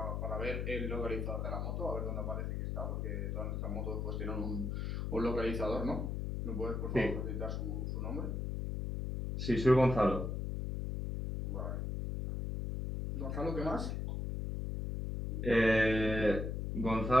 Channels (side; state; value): left; noise; hum, 2 dB below the sound